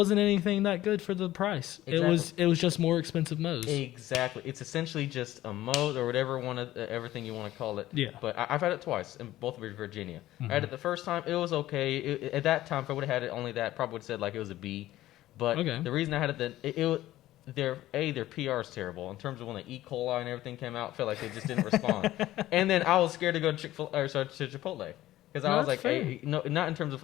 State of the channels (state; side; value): quieter; right; 15.0 dB